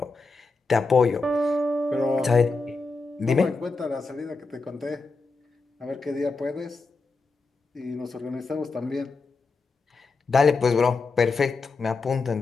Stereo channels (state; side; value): quieter; right; 3.9 dB